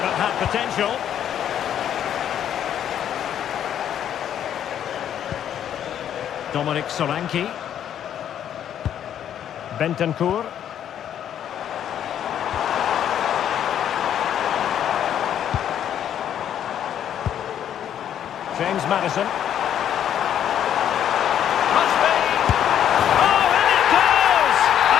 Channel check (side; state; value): right; quieter; 9.9 dB